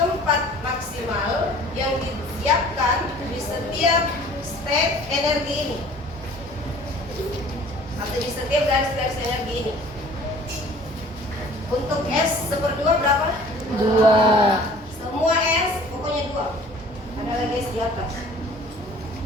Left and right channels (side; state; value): both; normal; correlation 0.49